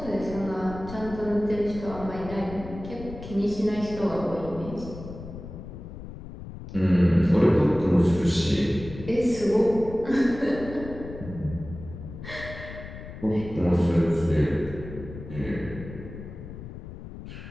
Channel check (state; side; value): noise; left; rumble, 12 dB below the sound